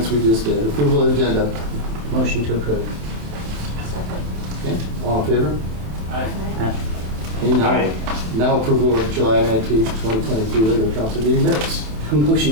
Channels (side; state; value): left; late; 27 ms